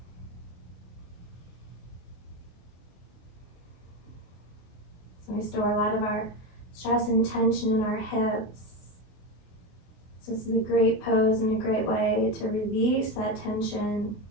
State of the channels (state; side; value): late; right; 24 ms